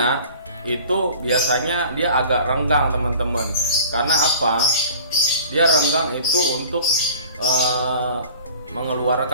itu biasanya dia agak renggang, teman-teman. Karena apa? Dia renggang itu untuk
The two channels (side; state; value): both; inverted; correlation -0.44